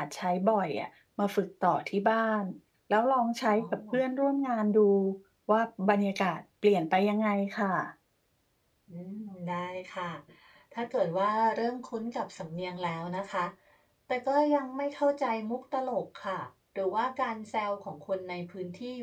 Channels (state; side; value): identical; both; correlation 1.00